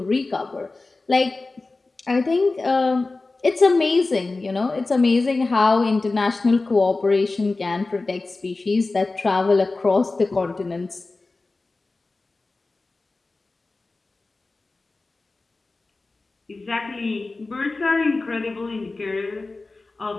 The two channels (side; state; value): right; quieter; 3.4 dB